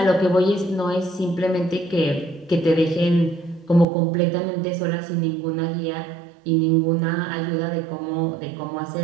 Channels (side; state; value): left; drops out; at 3.9 s